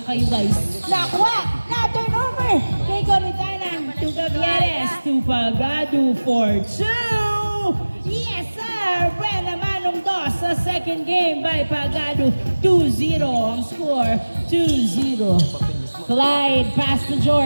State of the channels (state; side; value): inverted; both; correlation -1.00